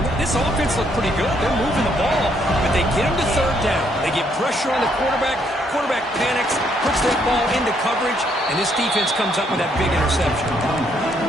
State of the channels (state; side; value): normal; both; correlation 0.71